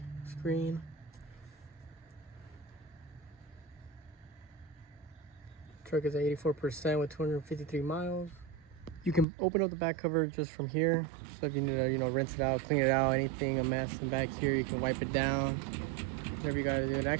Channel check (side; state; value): left; drops out; at 9.2 s